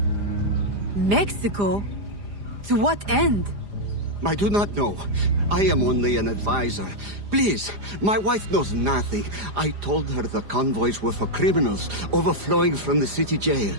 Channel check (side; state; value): left; late; 4.9 ms